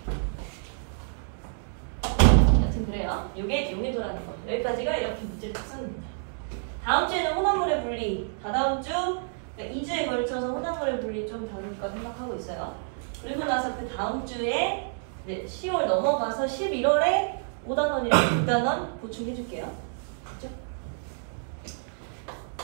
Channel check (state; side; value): silent; left; digital silence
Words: 여튼 그래요. 이게 용해도라는 거. 여기까지가 이렇게 문제 특성입니다. 다음 주에는 혼합물의 분리. 다다음 주, 그러니까 2주에 걸쳐서 혼합물의 분리 좀 다룰까 생각하고 있어요. 그리고 나서 그 다음 주에 10월 넘어가서 11월에 5단원이랑 6단원 보충해줄게요. 그렇죠?